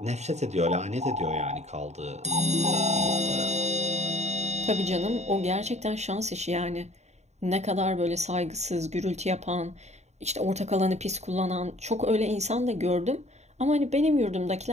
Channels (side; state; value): left; late; 0.32 ms